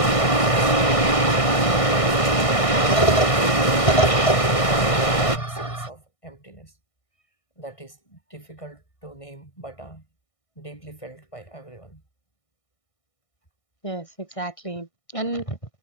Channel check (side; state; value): right; late; 1.6 ms